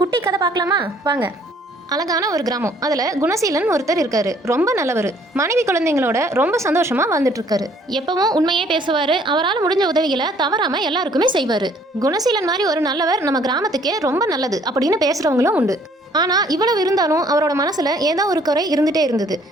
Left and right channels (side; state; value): both; normal; correlation 0.60